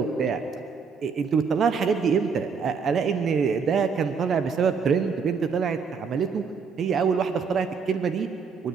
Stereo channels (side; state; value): left; quieter; 5.6 dB